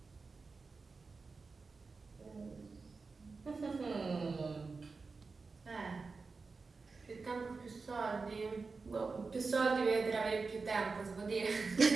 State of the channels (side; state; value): left; quieter; 4.3 dB